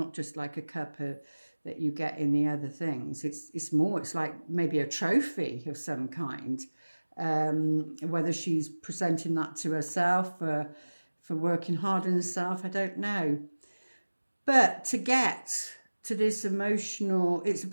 just like a cup that you get in the other things. It's more, it's like maybe a trophy of some kind. Whether she's presenting that to herself for working hard on herself, I don't know. But to get to this emotional, it's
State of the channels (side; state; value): both; inverted; correlation -1.00